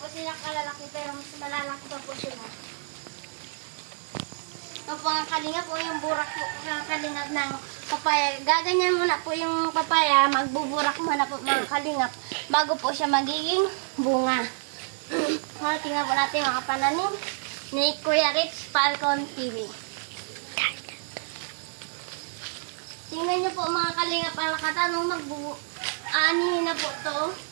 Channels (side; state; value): left; silent; digital silence